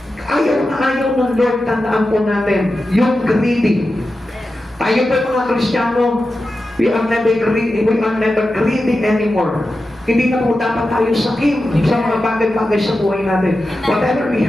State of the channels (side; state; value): both; normal; correlation 0.92